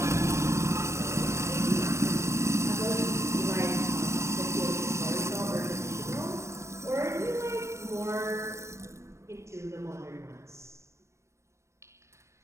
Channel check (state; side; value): late; left; 0.13 ms